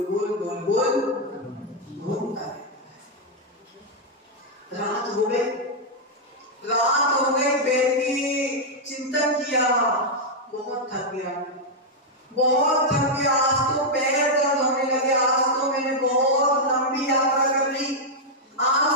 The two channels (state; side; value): normal; both; correlation -0.03